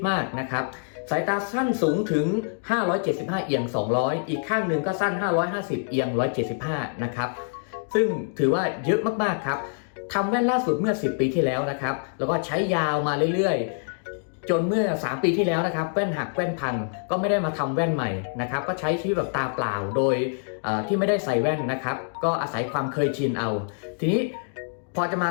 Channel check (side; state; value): right; silent; digital silence